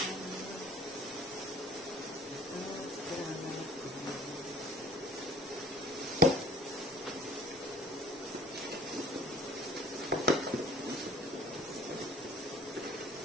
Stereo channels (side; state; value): both; normal; correlation 0.49